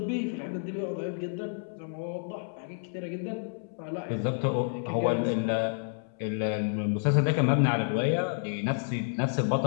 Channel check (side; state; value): right; silent; 58 dB below the other